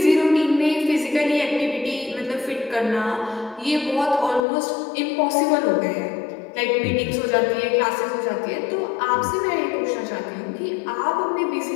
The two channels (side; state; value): right; drops out; at 4.4 s